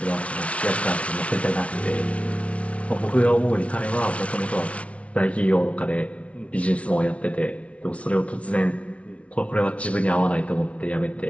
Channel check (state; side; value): late; right; 0.063 ms